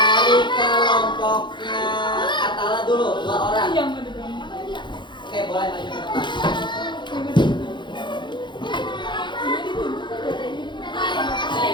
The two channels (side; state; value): right; late; 0.23 ms